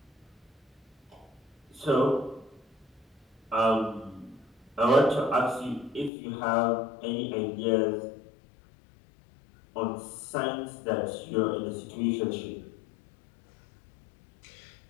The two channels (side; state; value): right; drops out; at 6.1 s